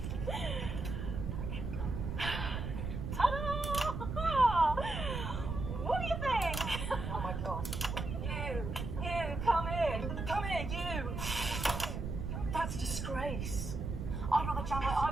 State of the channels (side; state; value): right; noise; rumble, 4 dB below the sound